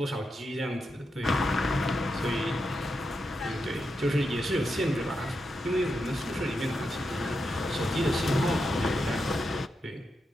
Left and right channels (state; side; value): normal; both; correlation 0.86